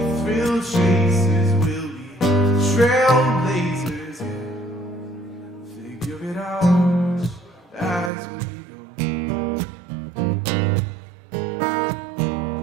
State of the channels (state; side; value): drops out; left; at 8.1 s